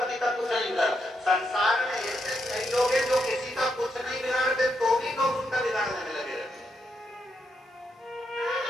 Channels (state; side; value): normal; both; correlation 0.81